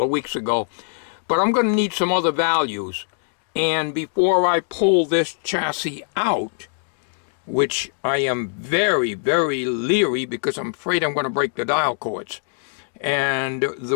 of weeks ago, but I'm going to need some other values. And before I pull this chassis out, which I am very, very leery because I'm afraid I'm going to break the dial cords. And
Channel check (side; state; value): right; silent; 64 dB below the other